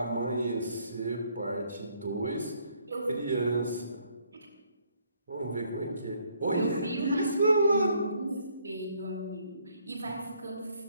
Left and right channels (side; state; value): both; inverted; correlation -0.67